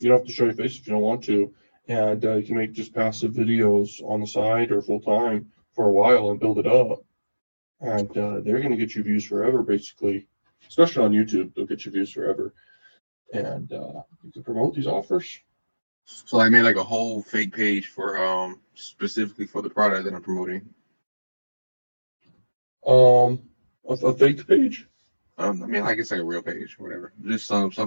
don't have to show your face if you don't want to. And you can make just passive videos on the side or full time for a while and build it up. And they're going to get you views forever, basically. Especially on YouTube, they'll get you views forever. And you can promote these offers. So I made like a whole fake page for specifically for the product that I'm promoting. A fake page. I mean, like it's like a real page or whatever. Just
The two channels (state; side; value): inverted; both; correlation -1.00